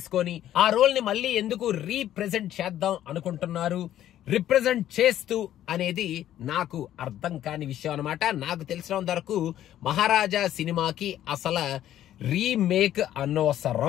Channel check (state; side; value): quieter; right; 12.1 dB